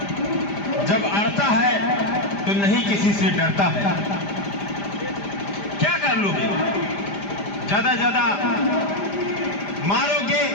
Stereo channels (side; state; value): right; late; 5.0 ms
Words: जब अड़ता है तो नहीं किसी से डरता है। क्या कर लोगे? ज्यादा मारोगे,